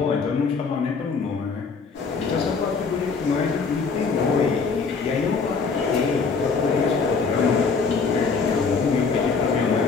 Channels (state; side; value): quieter; right; 5.0 dB